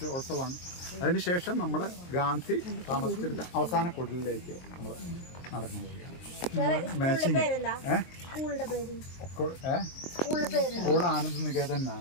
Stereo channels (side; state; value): right; late; 23 ms